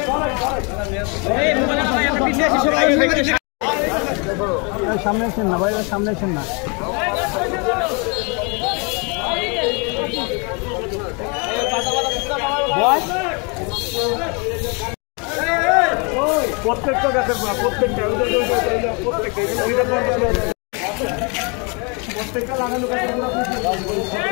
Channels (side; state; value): right; quieter; 33.0 dB